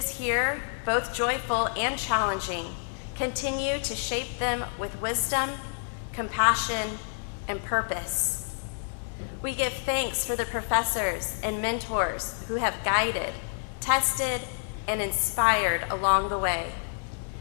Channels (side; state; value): right; silent; digital silence